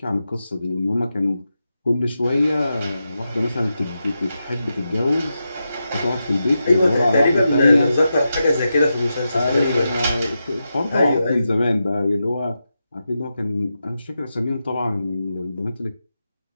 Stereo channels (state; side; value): inverted; both; correlation -0.89